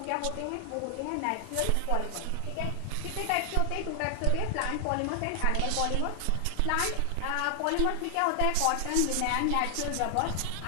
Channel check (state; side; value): different; both; correlation 0.00